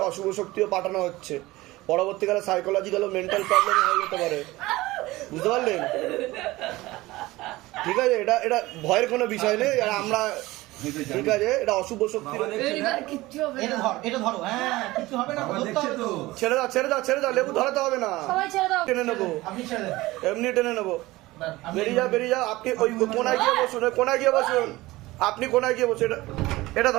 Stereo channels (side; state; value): left; quieter; 19.1 dB